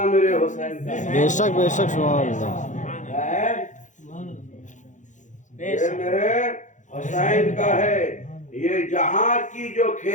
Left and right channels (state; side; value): late; right; 0.36 ms